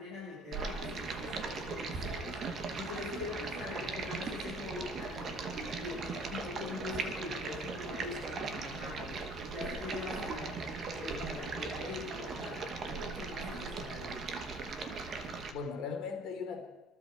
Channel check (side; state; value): both; normal; correlation 0.53